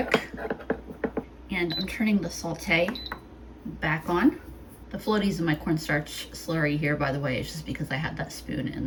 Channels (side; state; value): both; identical; correlation 1.00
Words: And I'm turning the saute back on. The floaties in my cornstarch slurry here, by the way, is just because I had that spoon